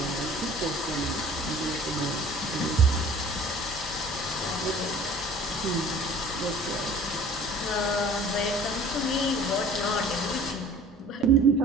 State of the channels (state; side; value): normal; both; correlation 0.48